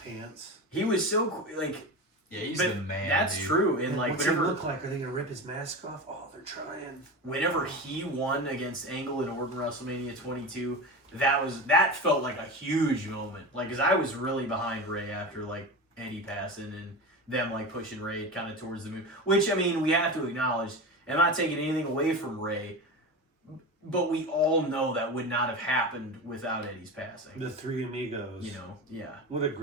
He was so like, Yeah, he's but the man. that's dude. true. And like what's he whenever look like? Are they gonna rip his mask off? Oh, they're trying. whenever he won against Angle in Orton WrestleMania 22, that felt like a huge moment. Like, cause I was really behind Rey after like Eddie passing and them like pushing Rey kind of towards the moon. Which I mean, we have to acknowledge. And I'm not taking anything away from Rey, but we all know that would not have happened without Eddie's passing. The Three Amigos. You know, yeah. What a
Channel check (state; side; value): normal; both; correlation 0.26